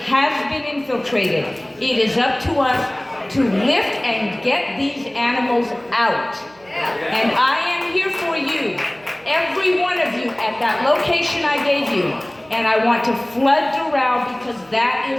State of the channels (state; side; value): noise; right; hum, 28 dB below the sound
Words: has been infiltrated. It is up to us to lift and get these animals out. And I am here for you, every one of you at that location I gave you. And I want to flood Doral because that